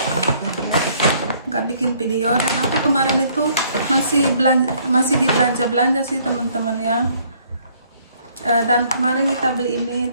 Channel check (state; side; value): inverted; both; correlation -0.63